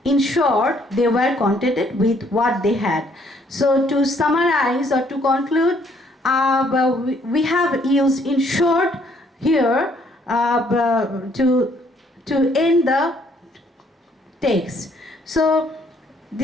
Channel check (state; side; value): normal; both; correlation 0.65